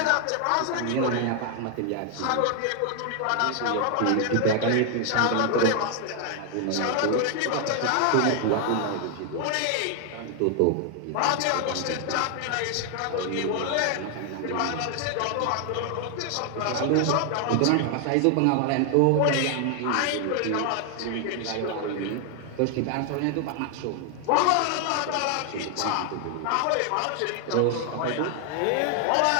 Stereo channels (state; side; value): different; both; correlation 0.00